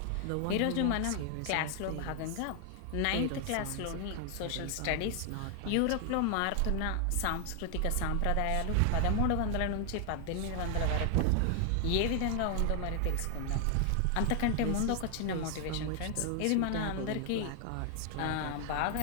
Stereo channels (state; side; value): different; both; correlation 0.00